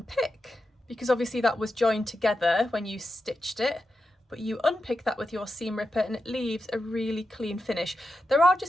because obviously that was joined together when you stitched it, but you unpick that with your seam ripper and it leaves a really clean finish. There are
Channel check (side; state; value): both; normal; correlation 0.89